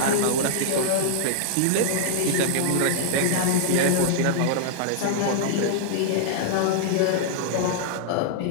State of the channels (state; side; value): different; both; correlation -0.01